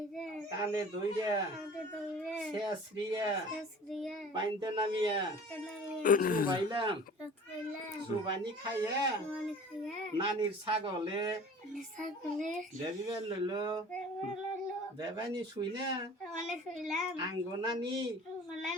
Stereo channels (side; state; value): both; normal; correlation 0.44